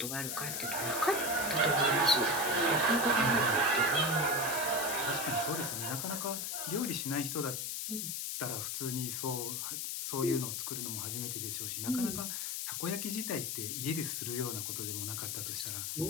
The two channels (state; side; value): noise; left; hiss, 2 dB below the sound